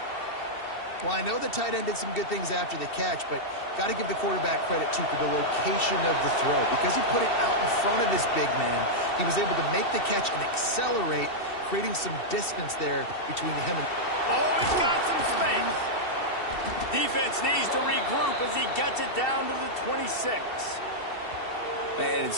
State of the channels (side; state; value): right; late; 2.7 ms